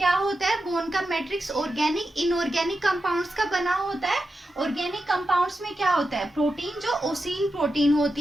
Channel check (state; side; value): normal; both; correlation 0.90